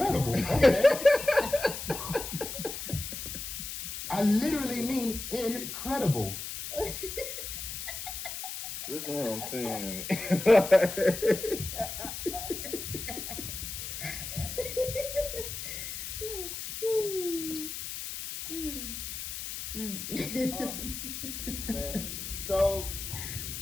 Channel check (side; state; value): left; noise; hiss, 6 dB below the sound